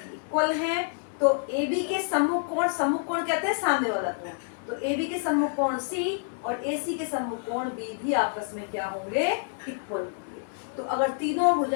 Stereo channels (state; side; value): silent; right; digital silence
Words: इक्वल हैं तो AB के सम्मुख कोण कहते हैं सामने वाला कोण। तो AB के सम्मुख कोण C और AC के सम्मुख कोण B भी आपस में क्या होंगे, इक्वल होंगे। तो अगर तीनों